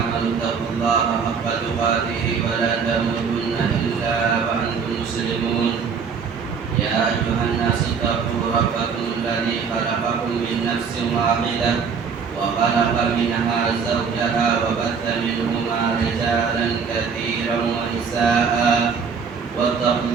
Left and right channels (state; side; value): quieter; left; 6.0 dB